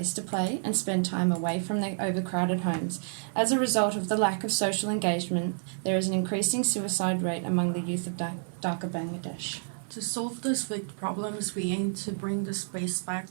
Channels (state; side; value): silent; left; digital silence